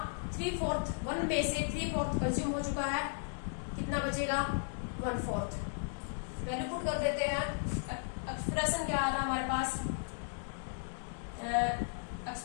3/4, 1 में से 3/4 कंज्यूम हो चुका है, कितना बचेगा? 1/4। वैल्यू पुट कर देते हैं। एक्सप्रेशन क्या आया था हमारे पास?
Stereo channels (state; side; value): silent; right; digital silence